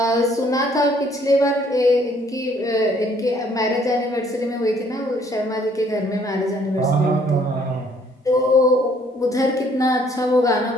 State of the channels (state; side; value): normal; both; correlation 0.63